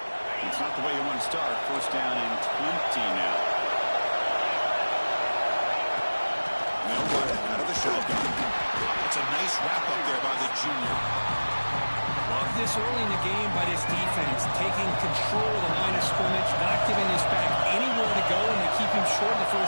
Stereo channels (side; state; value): both; inverted; correlation -1.00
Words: It's not the way you want to start. First down and 20 now. They'll run it out of the shotgun. It's a nice wrap up there by the junior. Love this early in the game by this defense, taking control of the line of scrimmage, not giving his back anywhere to go, and they keep him short of the